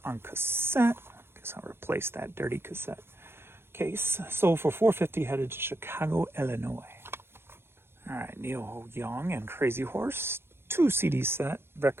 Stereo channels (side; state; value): left; late; 0.12 ms